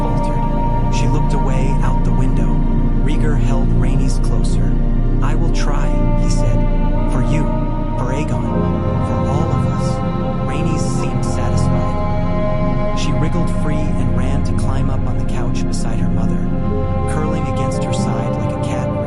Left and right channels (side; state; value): both; identical; correlation 1.00